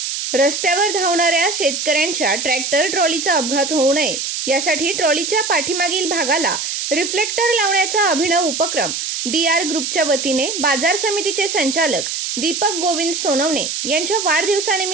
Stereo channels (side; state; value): right; noise; hiss, 3 dB below the sound